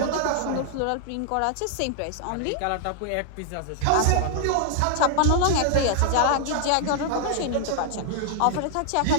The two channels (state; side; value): different; both; correlation -0.01